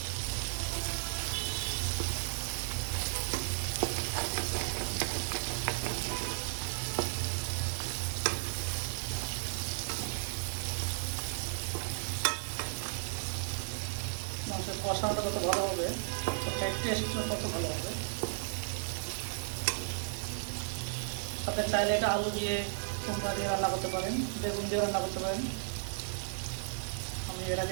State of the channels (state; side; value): silent; left; 55 dB below the other